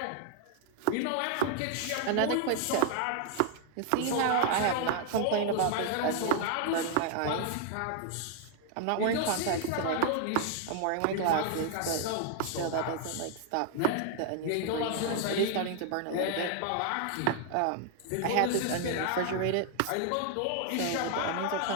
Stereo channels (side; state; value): both; different; correlation 0.00